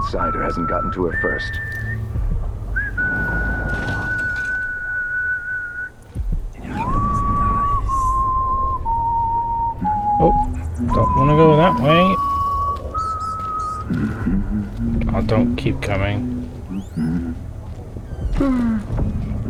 hasn't gotten to her first. Oh, don't want to go that way. Oh, don't keep coming.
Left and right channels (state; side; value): identical; both; correlation 1.00